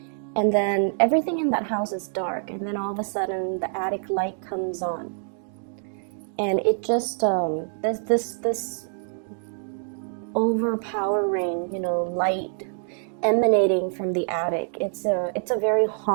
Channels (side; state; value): left; silent; digital silence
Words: And then everything in that house is dark, and then all of a sudden the attic light comes on, and it just there's this overpowering, light emanating from the attic. It's a very